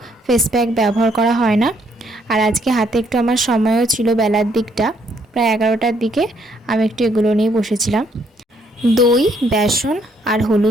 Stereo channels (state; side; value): normal; both; correlation 0.69